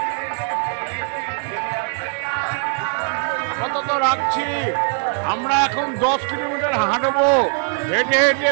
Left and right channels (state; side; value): silent; left; 57 dB below the other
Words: আপাতত রাখছি। আমরা এখন 10 কিলোমিটার হাঁটবো, হেঁটে হেঁটে